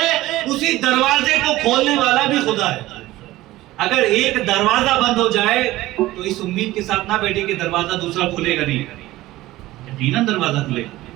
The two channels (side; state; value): left; quieter; 17.1 dB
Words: اسی دروازے کو کھولنے والا بھی خدا ہے۔ اگر ایک دروازہ بند ہو جائے تو اس امید کے ساتھ نہ بیٹھے کہ دروازہ دوسرا کھلے گا نہیں، یقیناً دروازہ کھلے گا،